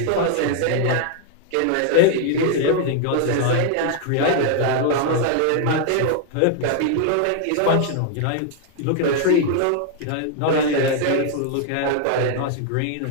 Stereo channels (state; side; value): different; both; correlation 0.00